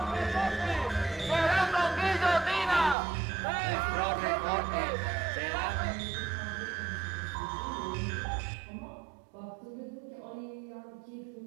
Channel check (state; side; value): drops out; left; at 3.0 s